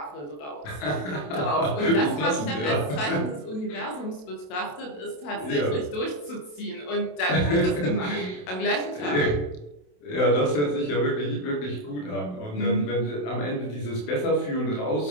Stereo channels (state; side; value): late; right; 27 ms